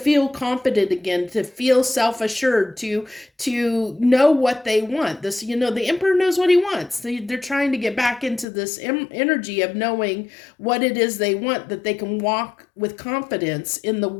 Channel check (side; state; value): right; drops out; at 8.5 s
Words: confident again, to feel self-assured, to know what they want. This, the Emperor knows what he wants. They're trying to get back into this energy of knowing what it is they want, that they can walk with confidence in the